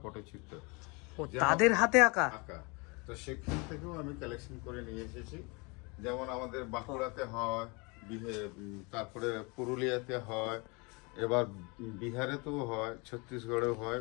পটচিত্র। তাদের হাতে আঁকা? তো সেখান থেকেও আমি কালেকশন করে নিয়ে এসেছি। যেমন আমাদের বাঁকুড়াতে হয়, তারপরে পুরুলিয়াতে হয়, এবার বিহারেতেও হয়, ছত্তিশগড়েও হয়,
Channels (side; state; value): right; quieter; 29.2 dB